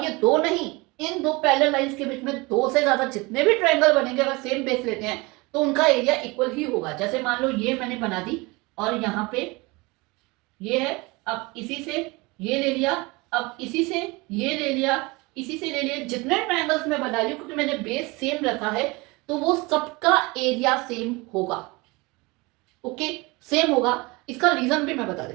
ये दो नहीं, इन दो पैरेलल लाइंस के बीच में दो से ज्यादा जितने भी ट्रायंगल बनेंगे अगर सेम बेस लेते हैं तो उनका एरिया इक्वल ही होगा। जैसे मान लो ये मैंने बना दी और यहाँ पे ये है, अब इसी से ये ले लिया, अब इसी से ये ले लिया, इसी से ले लिया, जितने ट्रायंगल्स मैं बना रही हूँ क्योंकि मैंने बेस सेम रखा है तो वो सबका एरिया सेम होगा। ओके, सेम होगा। इसका रीजन भी मैं बता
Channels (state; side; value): quieter; left; 24.6 dB